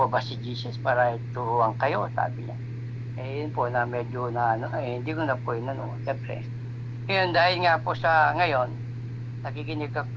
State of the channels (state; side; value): identical; both; correlation 1.00